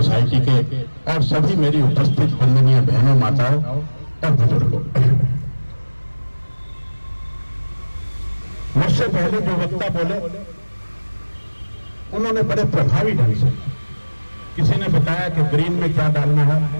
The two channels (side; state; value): both; inverted; correlation -1.00